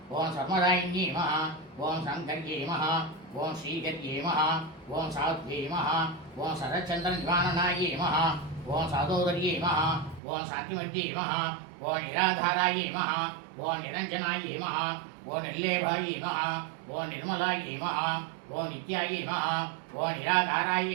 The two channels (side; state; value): left; drops out; at 10.2 s